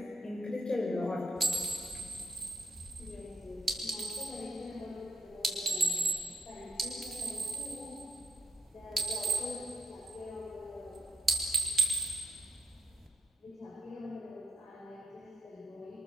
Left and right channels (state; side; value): normal; both; correlation 0.79